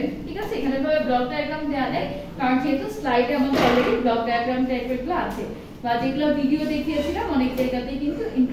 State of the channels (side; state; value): both; identical; correlation 1.00